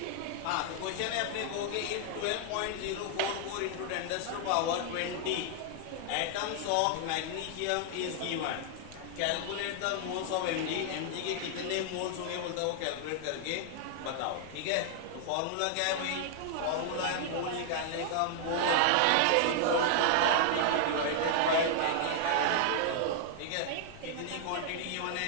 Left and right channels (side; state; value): both; different; correlation 0.00